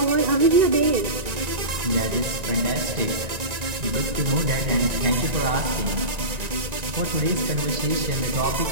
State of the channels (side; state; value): left; late; 1.9 ms